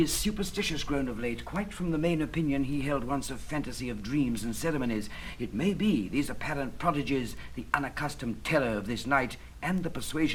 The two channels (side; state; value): both; identical; correlation 1.00